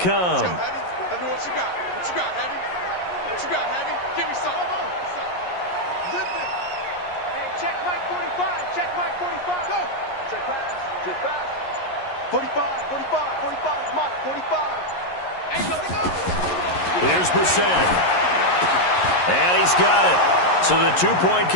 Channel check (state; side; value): late; right; 11 ms